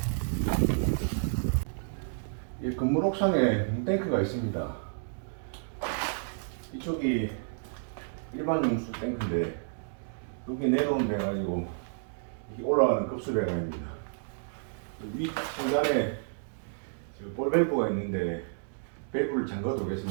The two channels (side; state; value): left; silent; digital silence